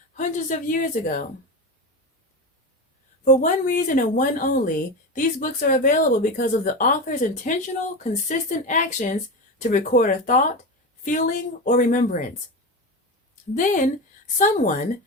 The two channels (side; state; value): both; normal; correlation 0.21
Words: hundreds of years ago? For one reason and one only, these books are available because of the author's intentional, consistent actions to record a thought, feeling, or remembrance. Then, someone,